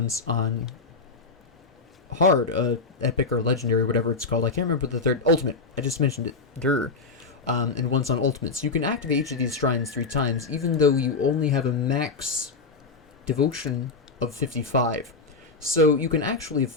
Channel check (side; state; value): right; quieter; 4.1 dB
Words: on hard, epic or legendary, whatever it's called. I can't remember the third. Ultimate. I just mentioned it. And once on ultimate. So you can activate each of these shrines 3 times, even though you only have a max devotion of 55. So you can actually